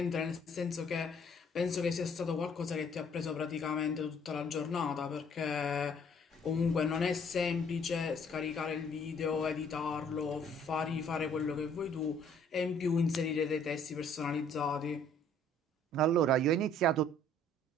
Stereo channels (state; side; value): normal; both; correlation 0.60